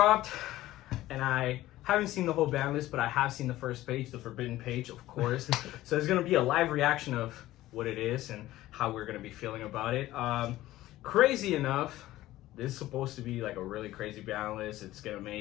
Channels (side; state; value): right; quieter; 15.8 dB